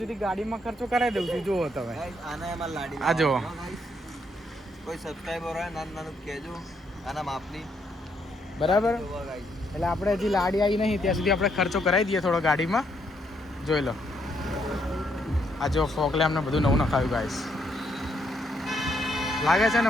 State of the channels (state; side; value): normal; both; correlation 0.74